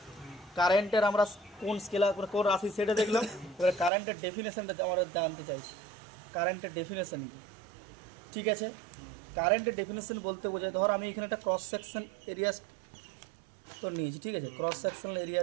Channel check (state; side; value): drops out; left; at 3.9 s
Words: কারেন্টের আমরা কোন স্কেলার কোন রাশি সেটা দেখলাম, এবার কারেন্টের ডেফিনেশনটা আমরা জানতে চাইছি, কারেন্টের ডেফিনেশন কি। ঠিক আছে, কারেন্টের ডেফিনেশন বলতে বোঝায়, ধর আমি এখানে একটা ক্রস সেকশন এরিয়া তো নিয়েছি, ঠিক আছে, ক্রস সেকশনাল এরিয়া